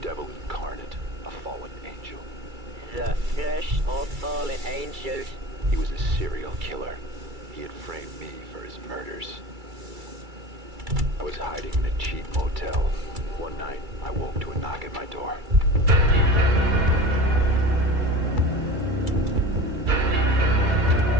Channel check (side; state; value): left; late; 2.3 ms